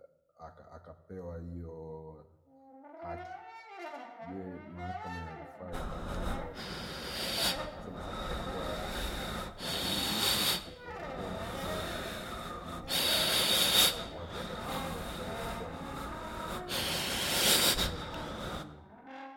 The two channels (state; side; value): identical; both; correlation 1.00